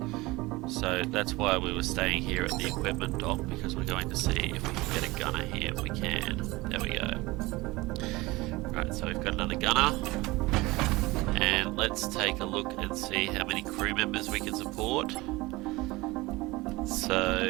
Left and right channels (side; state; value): left; quieter; 21.3 dB